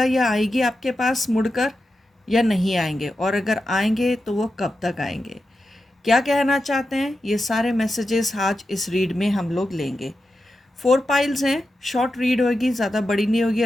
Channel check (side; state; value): both; normal; correlation 0.90